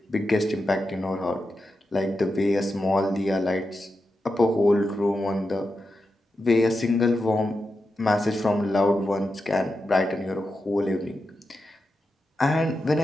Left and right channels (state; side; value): normal; both; correlation 0.89